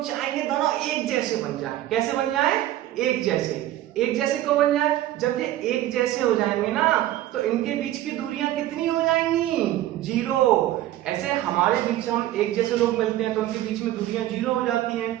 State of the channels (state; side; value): quieter; left; 14.1 dB